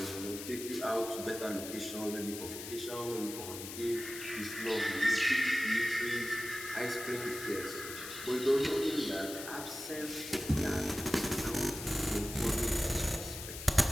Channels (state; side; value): noise; left; hiss, 9 dB below the sound